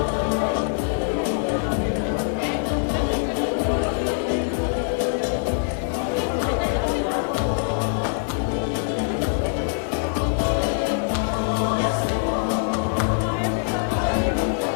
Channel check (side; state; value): right; silent; 62 dB below the other